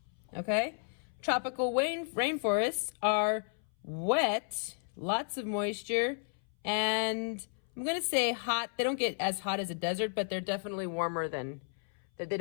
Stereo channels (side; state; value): right; silent; 56 dB below the other